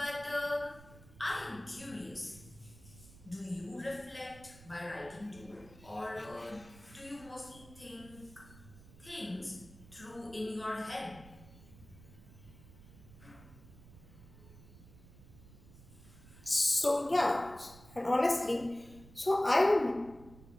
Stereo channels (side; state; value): right; noise; rumble, 20 dB below the sound